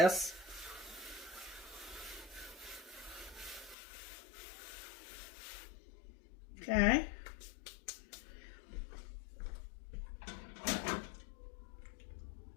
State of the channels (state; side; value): drops out; right; at 3.8 s